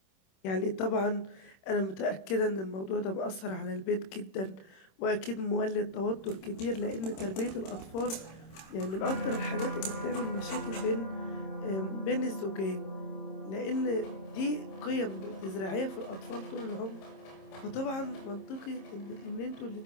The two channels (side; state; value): right; late; 26 ms